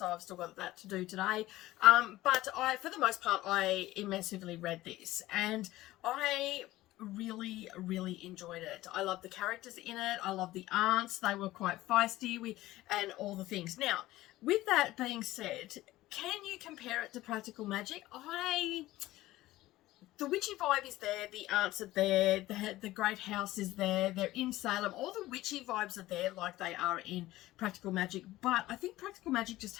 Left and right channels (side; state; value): right; quieter; 16.7 dB